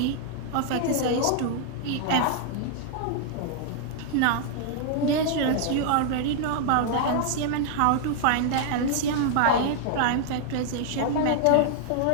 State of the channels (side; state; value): both; different; correlation -0.01